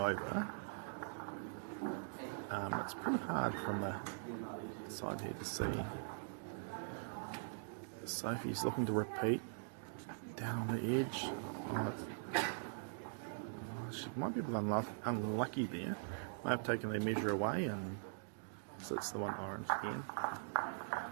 over. It's pretty hard from the side here to see. Sophie's looking to repeat down on the edge. She might be a bit unlucky there. Might have taken their measure away, and so it's the one orange again.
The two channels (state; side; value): silent; left; digital silence